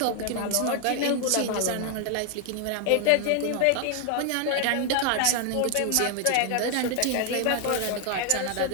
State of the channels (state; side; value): different; both; correlation 0.00